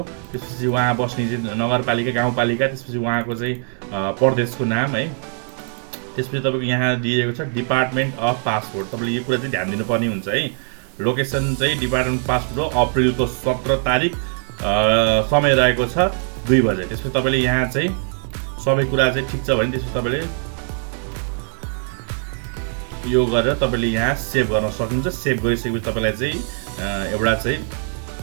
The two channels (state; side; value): silent; left; 57 dB below the other